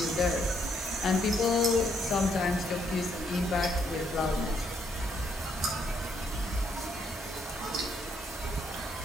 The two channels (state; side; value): normal; both; correlation 0.72